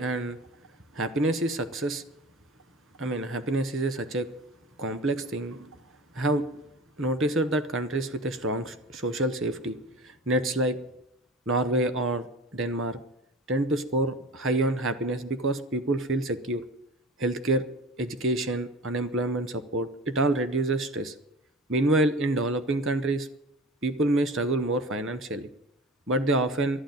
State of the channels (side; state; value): both; normal; correlation 0.35